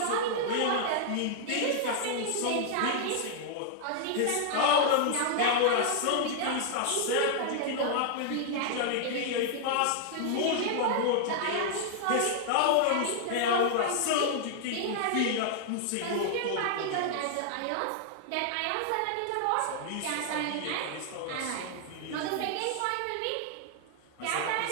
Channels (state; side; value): different; both; correlation -0.01